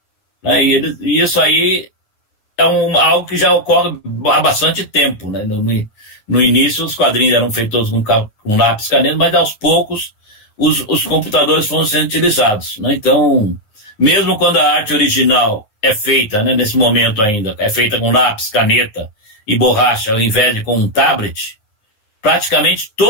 Né? E isso aí é algo que já ocorre há bastante tempo. Né? No início, os quadrinhos eram feitos com lápis, caneta, mas aos poucos os computadores foram sendo utilizados. Né? Então, mesmo quando a arte original é feita, né, nesse momento ainda, é feita com lápis, caneta e borracha, ao invés de com um tablet, praticamente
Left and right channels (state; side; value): late; right; 9.6 ms